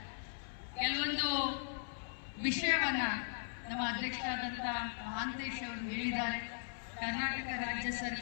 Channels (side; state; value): right; silent; 52 dB below the other